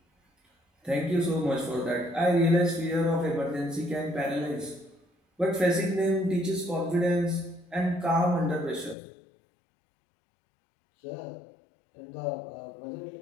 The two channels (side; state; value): right; drops out; at 9.0 s